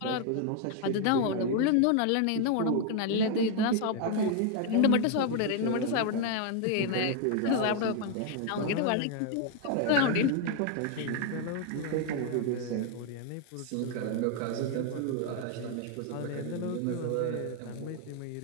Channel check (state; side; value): different; both; correlation 0.01